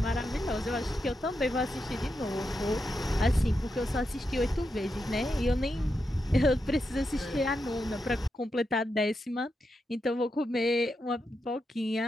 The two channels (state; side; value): normal; both; correlation 0.86